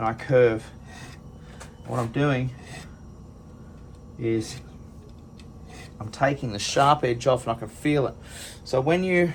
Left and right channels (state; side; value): identical; both; correlation 1.00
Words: I curve. What I'm doing is I'm taking the sharp edge off, and I can feel it. So when you